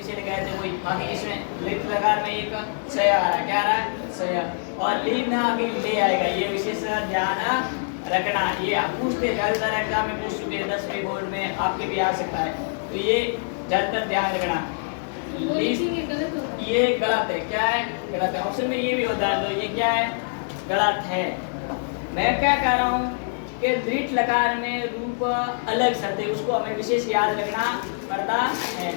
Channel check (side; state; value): right; silent; digital silence